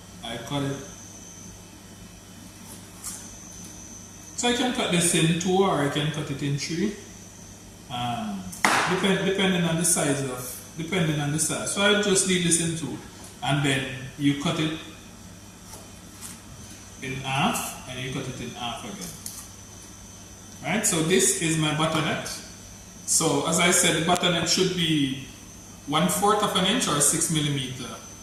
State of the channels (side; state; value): both; identical; correlation 1.00